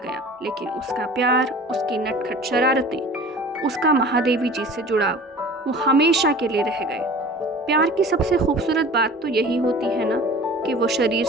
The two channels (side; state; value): both; normal; correlation 0.42